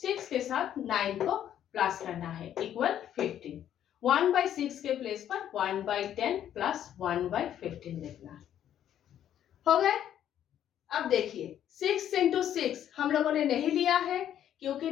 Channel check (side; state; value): right; quieter; 10.6 dB